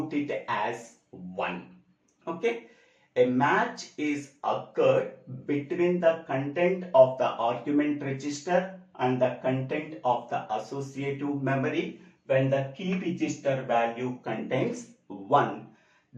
it as 1. Okay, a match is occurred between the content of the argument register and the content of the associative memory. When the key register value contains 1,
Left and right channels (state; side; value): identical; both; correlation 1.00